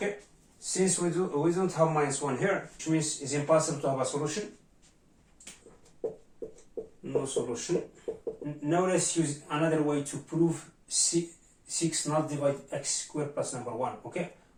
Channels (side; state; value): both; identical; correlation 1.00